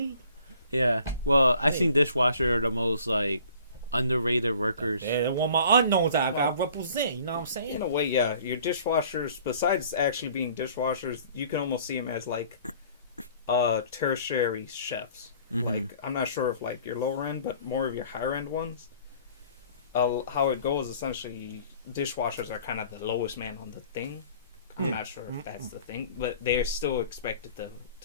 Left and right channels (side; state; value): both; inverted; correlation -0.52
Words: Yeah. Well, I think dishwashers are the most like underrated workers. And when my unknowns, I got to represent. You know what I'm saying? In a way, yeah. Your dishwashers, besides actually being dishwashers, you can almost see them as like tertiary chefs. Mhm. Like, I'm not sure if like your lower end, but more of your higher end ones. How it goes, essentially, dishwashers are kind of the lowest man on the thing. I'm not sure if that's the thing, but they're still expected